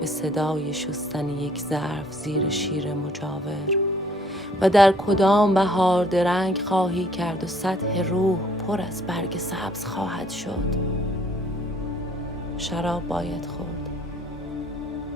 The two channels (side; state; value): both; normal; correlation 0.60